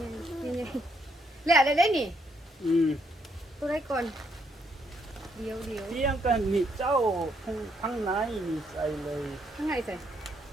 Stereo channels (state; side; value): normal; both; correlation 0.73